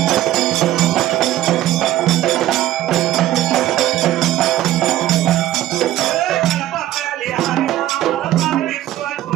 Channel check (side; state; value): left; quieter; 13.9 dB